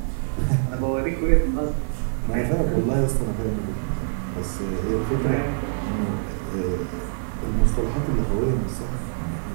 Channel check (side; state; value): left; silent; digital silence